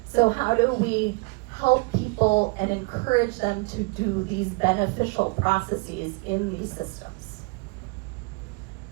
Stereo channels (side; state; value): left; quieter; 28.3 dB